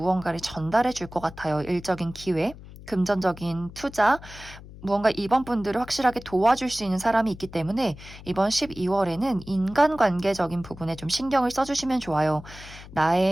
전달해 줄 것 같아요. 일적인 기회, 금전적인 투자, 무언가 이번 분들을 확실하게 도와줄 수 있는 사람이 있기 때문에 이번 12월에는 인간관계적인 부분에 좀 신경을 써주시면 좋아요.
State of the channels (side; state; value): left; noise; hum, 17 dB below the sound